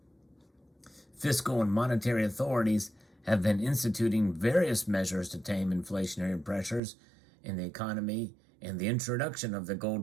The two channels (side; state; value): left; drops out; at 6.8 s